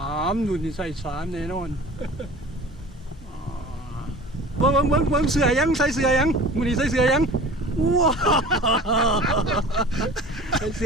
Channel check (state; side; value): normal; both; correlation 0.41